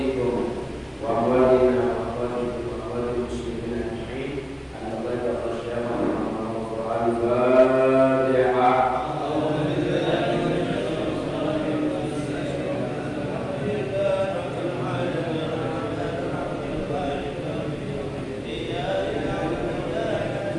wa walidina wa walidikum wa walidil muslimin ajma'in al-Fatiha.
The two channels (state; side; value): identical; both; correlation 1.00